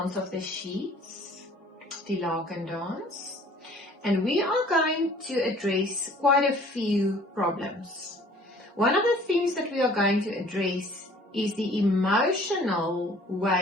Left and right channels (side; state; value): both; normal; correlation 0.53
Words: of the sheets, die laken dance. And we are going to address quite a few problems. One of the things that we are going to address is the emotional